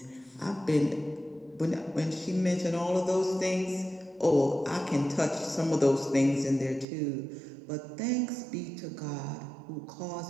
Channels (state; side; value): drops out; left; at 6.9 s